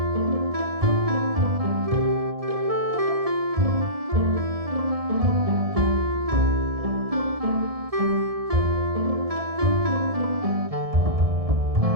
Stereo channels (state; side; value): late; left; 1.7 ms